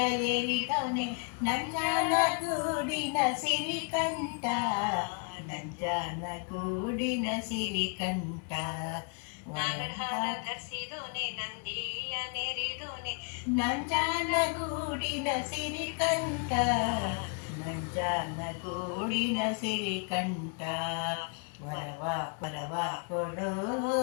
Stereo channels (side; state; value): right; quieter; 37.6 dB